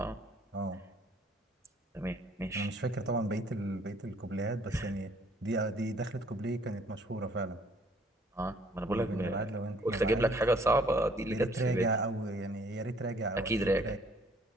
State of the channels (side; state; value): both; normal; correlation 0.60